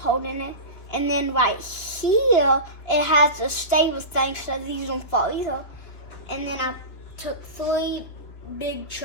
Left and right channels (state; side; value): late; right; 3.6 ms